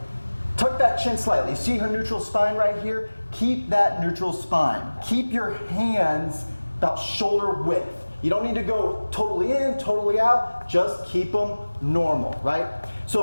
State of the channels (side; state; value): both; inverted; correlation -1.00